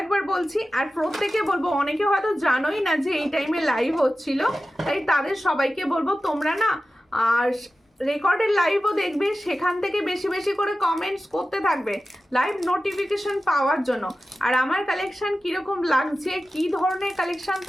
একবার বলছি, আর প্রত্যেকে বলবো, অনেকে হয়তো জানোই না যে এই টাইমে লাইভ হচ্ছিল, তাই তাদের সবাইকে বলবো তোমরা না আর রেকর্ডের লাইভও দেখবে, সেখান থেকে বেশি বেশি করে কমেন্টস করতে থাকবে লাইভ নোটিফিকেশন পাওয়ার জন্য। আর আমার কালেকশন কীরকম লাগছে, কী ধরনের কালেকশন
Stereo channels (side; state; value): both; normal; correlation 0.94